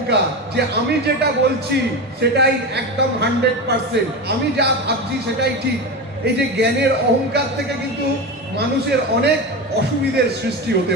যে আমি যেটা বলছি সেটাই একদম 100%, আমি যা ভাবছি সেটাই ঠিক, এই যে জ্ঞানের অহংকার থেকে কিন্তু মানুষের অনেক অসুবিধার সৃষ্টি হতে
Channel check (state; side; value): normal; both; correlation 0.21